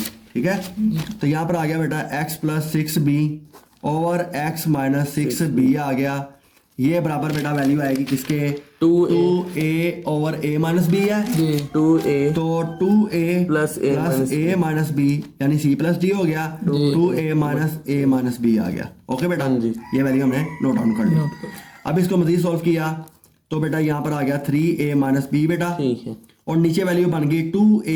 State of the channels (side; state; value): both; identical; correlation 1.00